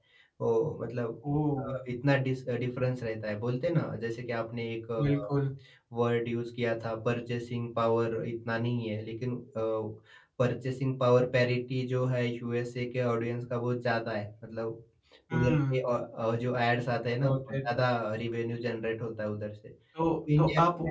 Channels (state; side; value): identical; both; correlation 1.00